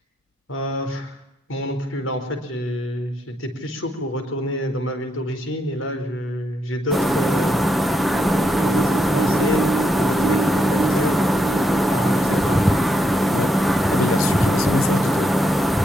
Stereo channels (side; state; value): both; normal; correlation 0.79